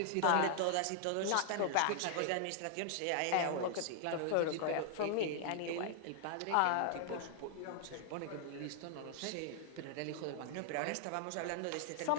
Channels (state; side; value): different; both; correlation 0.00